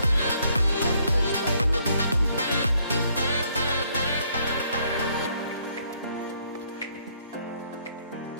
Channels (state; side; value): inverted; both; correlation -0.69